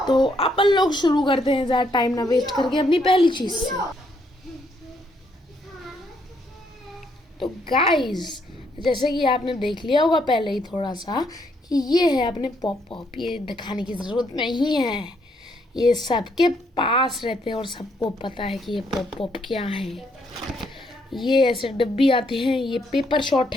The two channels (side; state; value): both; normal; correlation 0.73